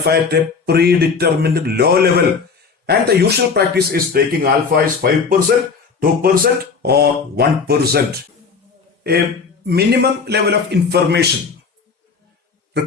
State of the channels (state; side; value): quieter; right; 5.2 dB